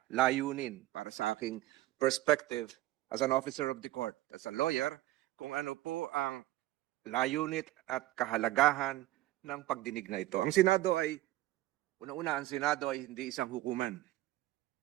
layunin para sa aking perspective as an officer of the court, as a lawyer, kung ano po ang layunin at kahalagahan ng pagdinig na ito. Ang Senado ay, una-una, ang Senado ay hindi isang hukuman.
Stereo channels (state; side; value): quieter; left; 16.5 dB